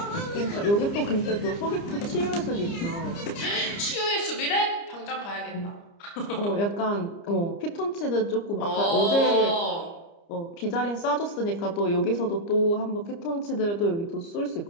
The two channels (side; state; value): right; late; 29 ms